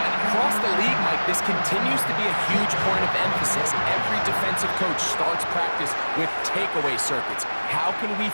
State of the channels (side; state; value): both; inverted; correlation -1.00